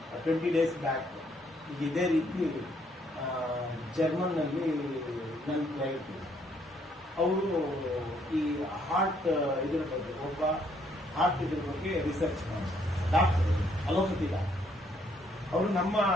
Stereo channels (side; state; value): both; normal; correlation 0.69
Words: 20 days ಬ್ಯಾಕ್ ಈಗ ಇದೇ ರೀತಿ ಜರ್ಮನ್ ನಲ್ಲಿ ನನ್ನ ಕ್ಲೈಂಟ್ ಅವರು ಈ ಹಾರ್ಟ್ ಇದ್ರ ಬಗ್ಗೆ ಒಬ್ಬ ಹಾರ್ಟ್ ಇದ್ರ ಬಗ್ಗೆ ರಿಸರ್ಚ್ ಮಾಡ್ತಾರೆ, ಡಾಕ್ಟರ್ ಅಲೋಪತಿ ಡಾಕ್ಟರ್. ಅವರು ನಮ್ಮ